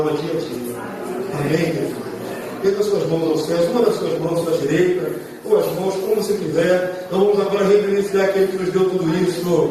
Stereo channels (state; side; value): identical; both; correlation 1.00